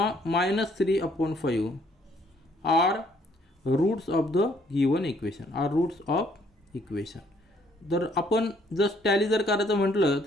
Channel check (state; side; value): normal; both; correlation 0.65